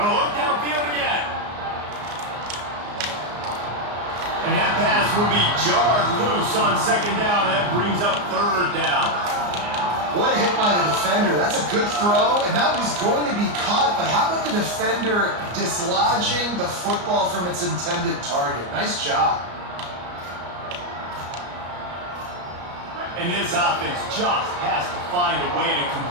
look downfield again. And that pass will be jarred loose on 2nd down. That brings up 3rd down. What a hit by the defender. That's a good throw, and that was going to be caught, but how about the defender dislodging the football from its intended target? Nice job. And this offense just has to find a way to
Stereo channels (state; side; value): late; left; 34 ms